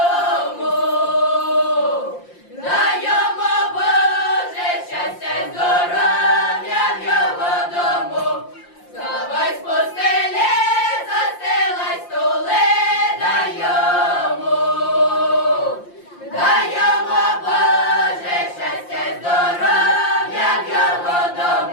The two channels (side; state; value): right; late; 5.7 ms